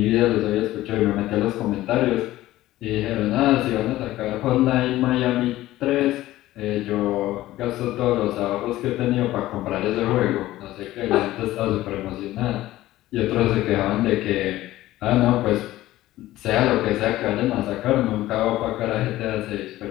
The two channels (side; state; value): right; quieter; 15.8 dB